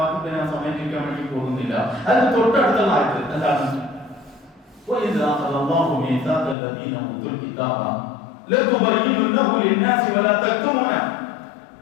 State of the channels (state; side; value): drops out; right; at 6.6 s